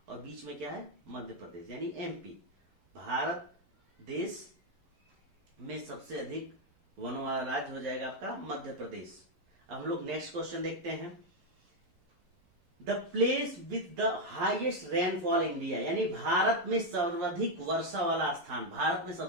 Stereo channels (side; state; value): left; late; 11 ms